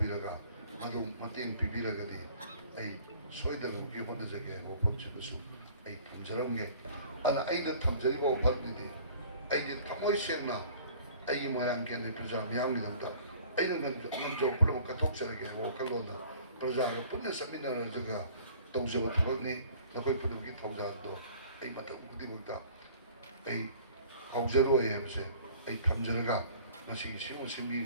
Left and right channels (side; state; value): both; inverted; correlation -0.50